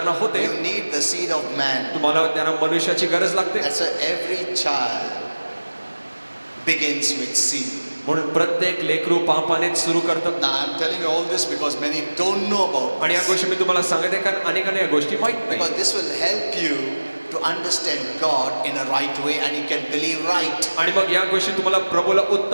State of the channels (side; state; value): both; inverted; correlation -1.00